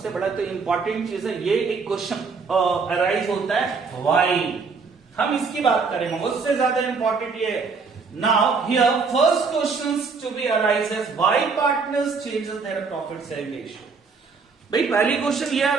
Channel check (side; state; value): left; quieter; 4.9 dB